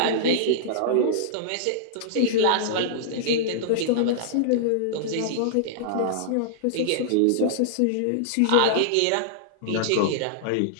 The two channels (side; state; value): both; different; correlation -0.01